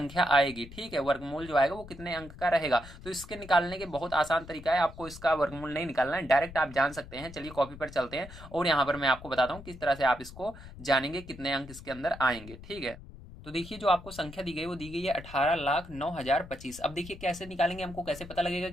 आएगी। ठीक है, वर्गमूल जो आएगा वो कितने अंक का रहेगा। तो इसके निकालने के बहुत आसान तरीका है, आपको इसका वर्गमूल नहीं निकालना है, डायरेक्ट आप जान सकते हैं। चलिए कॉपी पर चलते हैं और यहाँ पर मैं आपको बताता हूँ किस तरह से आप इसको जानेंगे कितने अंक इसके अंदर आएंगे। ठीक है, तो देखिए जो आपको संख्या दी गई वो दी गई है 18,09,025। अब देखिए कैसे निकालेंगे, हमको कैसे पता लगेगा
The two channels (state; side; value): noise; left; rumble, 16 dB below the sound